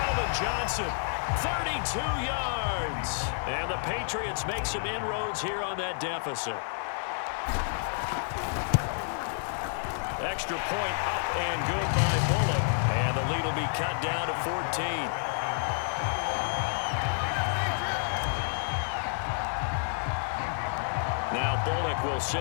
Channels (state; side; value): silent; right; digital silence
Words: Johnson, 32 yards. And the Patriots make some inroads here on that deficit. Extra point up and good by Bullock. And the lead will be cut down to 14. Now Bullock will